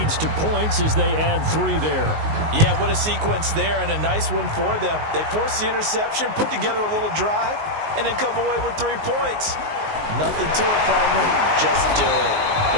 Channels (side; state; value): left; late; 19 ms